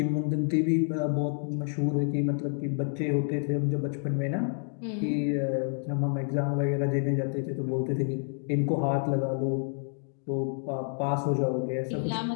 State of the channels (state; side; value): silent; right; 59 dB below the other